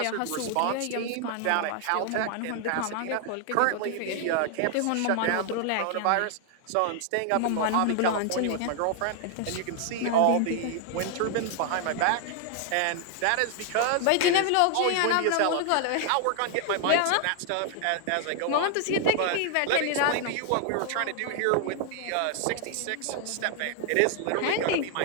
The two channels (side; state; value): both; different; correlation 0.00